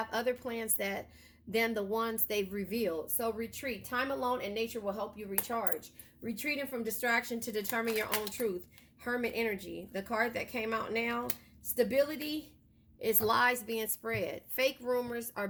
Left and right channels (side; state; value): both; identical; correlation 1.00